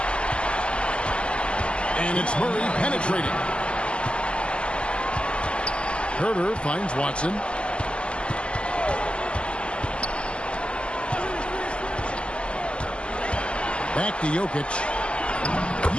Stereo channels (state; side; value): late; right; 0.053 ms